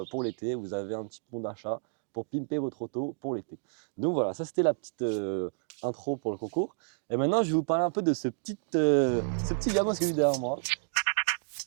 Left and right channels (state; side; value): silent; left; digital silence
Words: pour l'été, vous avez un petit bon d'achat pour pimper votre auto pour l'été. Donc voilà, ça c'était la petite intro pour le concours. Et maintenant, je vais vous parler un peu de ce petit gamin qui est derrière moi.